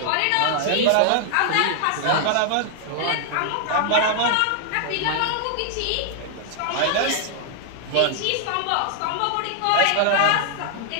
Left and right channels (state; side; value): different; both; correlation 0.00